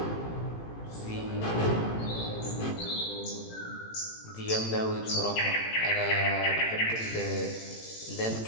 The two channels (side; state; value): right; late; 18 ms